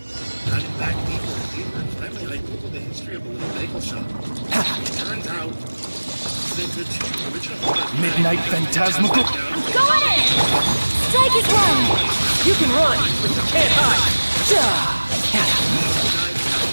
Diving back deeper and deeper, and finally I googled the history of a little bagel shop. It turns out that the two original owners... Midnight Phantasmical. Go at it! strike is one! You can run, but you can't hide.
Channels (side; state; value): both; inverted; correlation -1.00